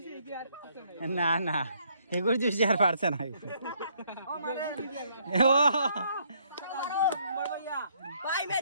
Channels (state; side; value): inverted; both; correlation -0.69